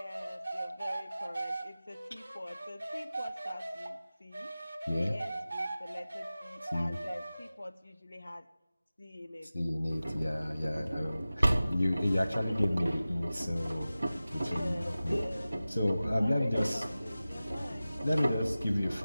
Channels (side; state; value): both; inverted; correlation -0.96